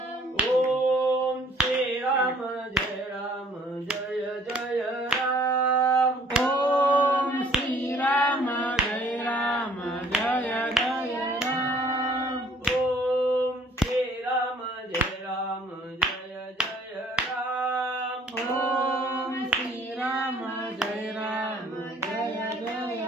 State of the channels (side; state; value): both; normal; correlation 0.58